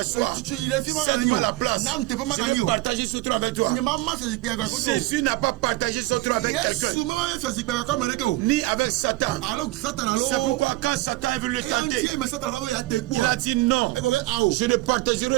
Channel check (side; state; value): left; quieter; 19.3 dB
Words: Cède-moi la place. Je vais partager ce trône avec toi. Jésus n'a pas partagé son trône avec quelqu'un, ni avec Satan. C'est pourquoi quand Satan est venu le tenter, il a dit non, je ne